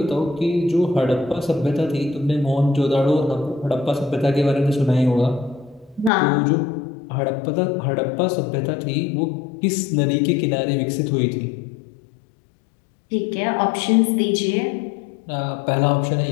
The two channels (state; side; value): drops out; right; at 6.1 s